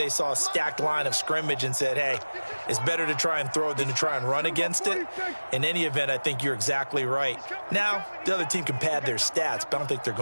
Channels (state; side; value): inverted; both; correlation -1.00